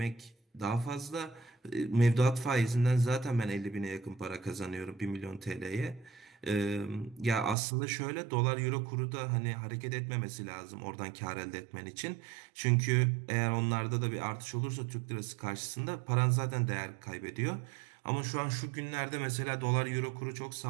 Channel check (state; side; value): drops out; left; at 7.6 s